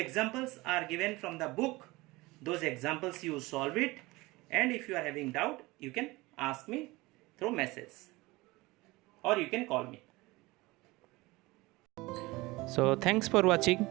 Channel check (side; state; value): left; quieter; 21.5 dB